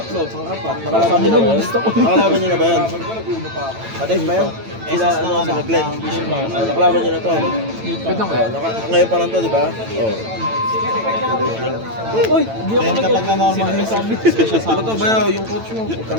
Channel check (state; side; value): late; left; 9.0 ms